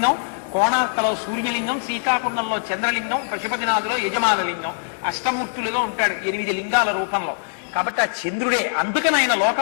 కోణార్కలో సూర్యలింగం, శ్రీకాకుళంలో చంద్రలింగం, పశుపతినాథులో యజమానలింగం, అష్టమూర్తులుగా ఉంటాడు 8 లింగాల రూపంలో. కాబట్టి ఆ చంద్రుడే, అందుకని ఆయన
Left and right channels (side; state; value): right; silent; digital silence